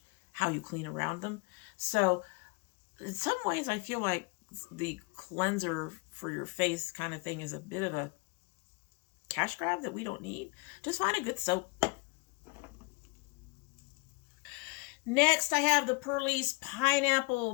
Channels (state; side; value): quieter; right; 28.5 dB